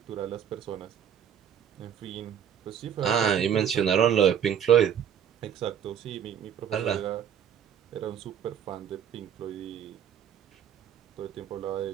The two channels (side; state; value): left; quieter; 8.9 dB